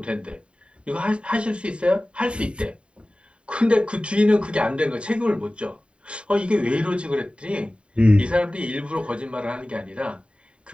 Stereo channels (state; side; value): late; left; 0.057 ms